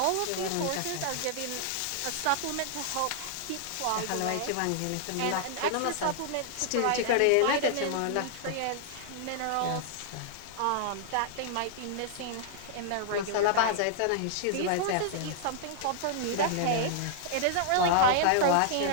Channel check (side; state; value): both; different; correlation -0.01